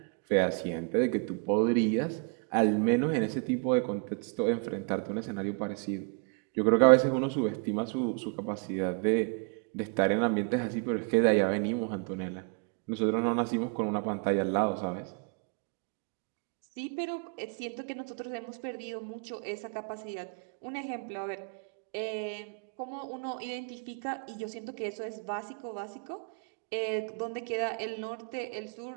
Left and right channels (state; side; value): quieter; left; 37.7 dB